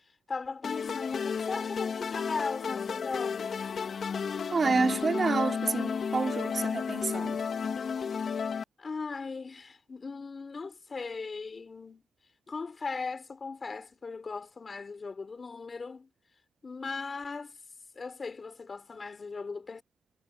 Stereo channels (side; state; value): both; normal; correlation 0.87